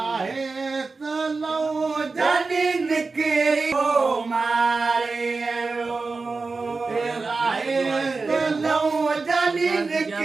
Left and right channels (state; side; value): quieter; left; 4.0 dB